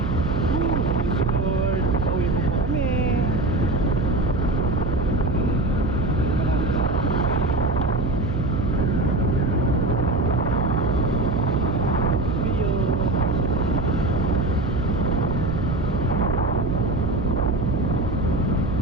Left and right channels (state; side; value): noise; right; hum, 5 dB below the sound